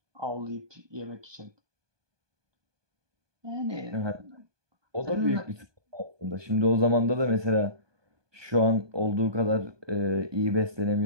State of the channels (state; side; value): late; left; 1.2 ms